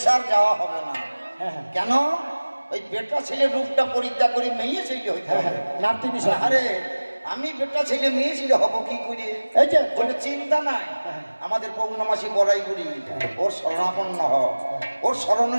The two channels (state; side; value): inverted; both; correlation -1.00